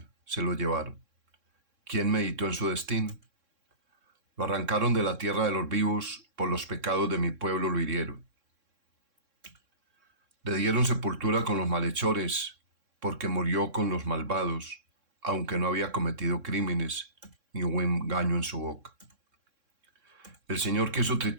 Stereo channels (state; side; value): late; left; 3.6 ms